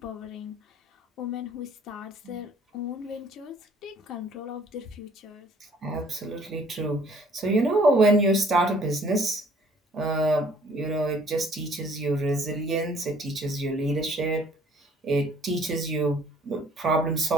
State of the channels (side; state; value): both; normal; correlation 0.58